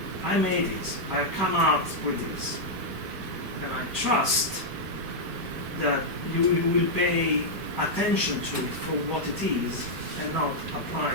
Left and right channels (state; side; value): late; left; 5.3 ms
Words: I made this. I come out with this, and I trust that you will pay attention to it for what it is, and not apply